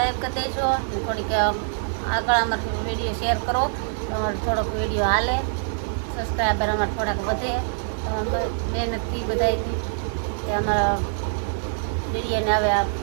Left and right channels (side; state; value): left; silent; digital silence